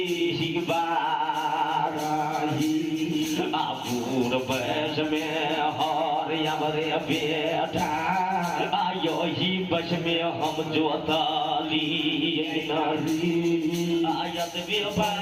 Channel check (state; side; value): identical; both; correlation 1.00